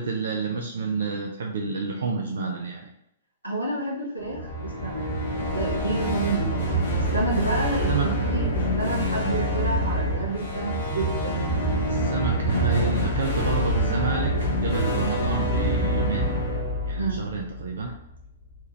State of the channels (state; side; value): inverted; both; correlation -0.34